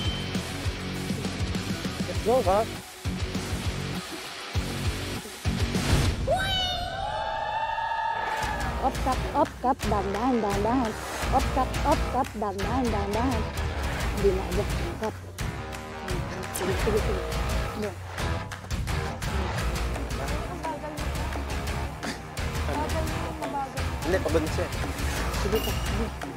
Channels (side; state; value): both; identical; correlation 1.00